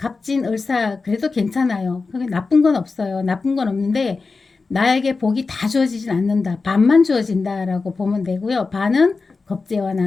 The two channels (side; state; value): right; quieter; 4.2 dB